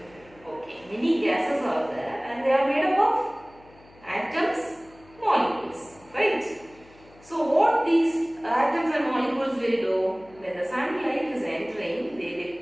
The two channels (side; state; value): left; noise; hum, 26 dB below the sound